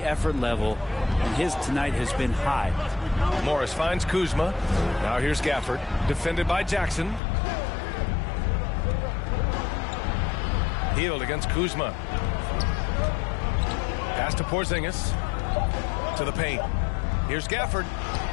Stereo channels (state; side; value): drops out; right; at 7.2 s